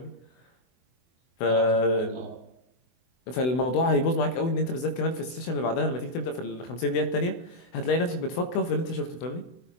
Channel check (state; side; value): late; right; 24 ms